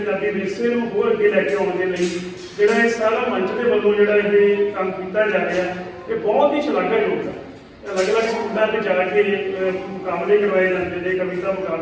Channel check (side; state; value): both; identical; correlation 1.00